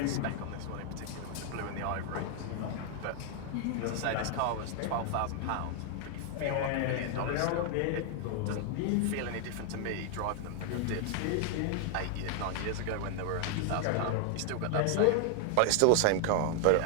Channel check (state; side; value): different; both; correlation 0.00